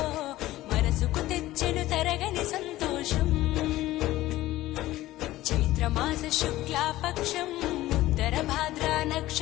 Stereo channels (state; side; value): quieter; right; 16.2 dB